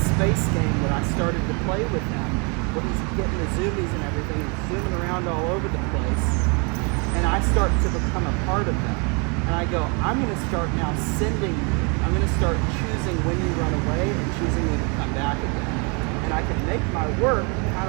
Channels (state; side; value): quieter; left; 33.5 dB